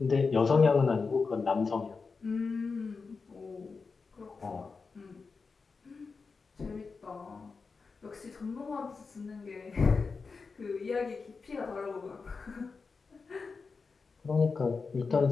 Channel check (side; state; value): right; quieter; 4.7 dB